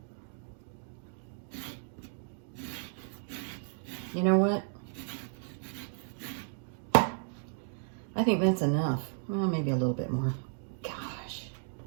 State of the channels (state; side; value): silent; left; digital silence